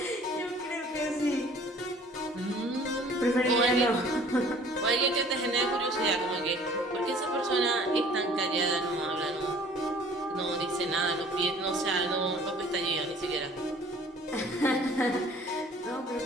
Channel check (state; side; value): normal; both; correlation 0.51